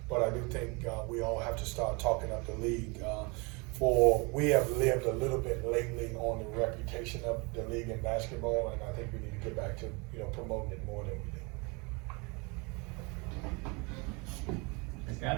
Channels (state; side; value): quieter; left; 29.2 dB